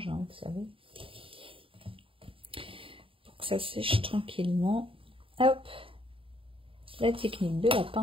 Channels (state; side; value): late; left; 0.26 ms